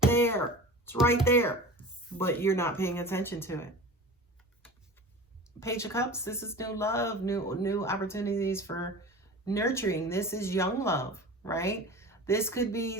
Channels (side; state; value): both; normal; correlation 0.35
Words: It's right there, but you're not paying attention to it. Page of Cups, this is new love, new opportunities for nurturing. This is young love, right? This could